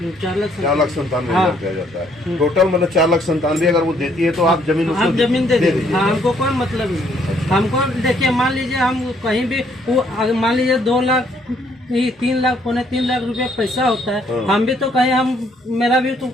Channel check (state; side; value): normal; both; correlation 0.67